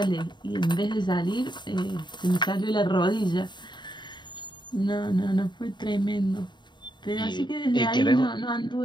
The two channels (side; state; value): right; late; 0.22 ms